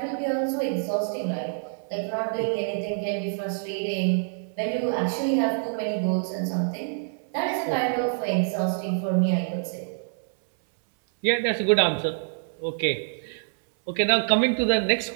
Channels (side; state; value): left; silent; 61 dB below the other